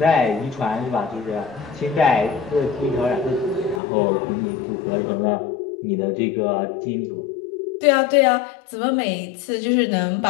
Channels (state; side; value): drops out; right; at 3.8 s